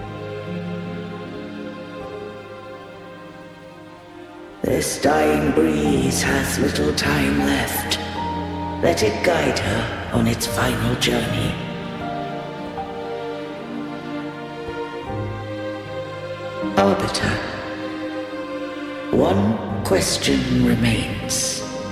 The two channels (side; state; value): both; identical; correlation 1.00